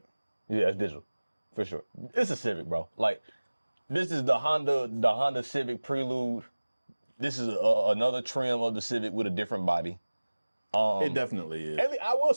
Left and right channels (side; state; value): both; inverted; correlation -1.00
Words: Yeah, it's digital. For sure. It's a Civic, bro. Like, this is the Honda Civic Prelude. This is another trim of the Civic with a different body. It definitely is. I will